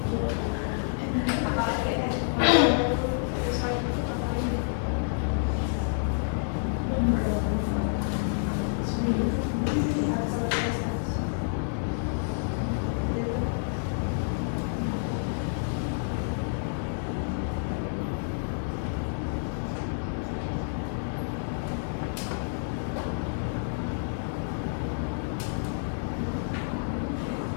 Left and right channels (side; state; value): right; silent; digital silence